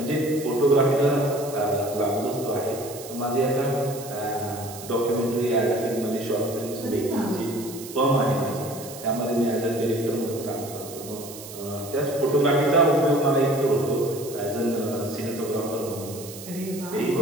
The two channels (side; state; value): right; noise; hiss, 14 dB below the sound